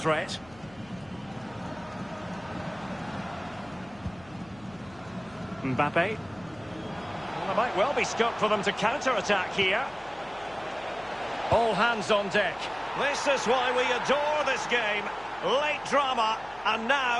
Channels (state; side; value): noise; left; hum, 24 dB below the sound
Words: Mbappe. Well, there might well be scope for them to counter-attack here. All hands on deck. This is why we adore this game. Late drama, and